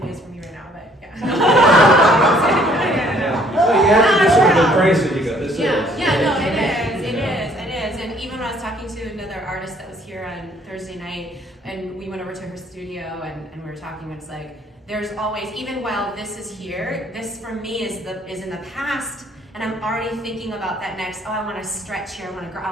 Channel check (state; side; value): normal; both; correlation 0.61